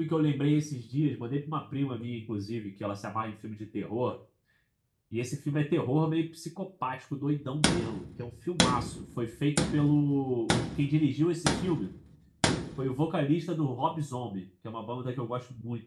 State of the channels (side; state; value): both; identical; correlation 1.00